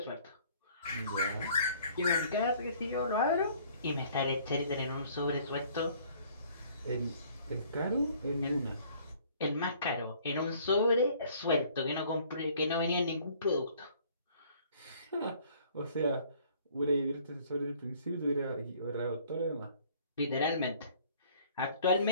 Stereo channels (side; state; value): both; inverted; correlation -0.57